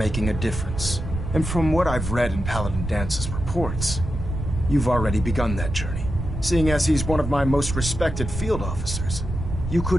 a difference. And from what I've read in Paladin Dance's reports, you've already begun that journey. Seeing as he's one of my most respected field officers, you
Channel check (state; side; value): noise; right; rumble, 5 dB below the sound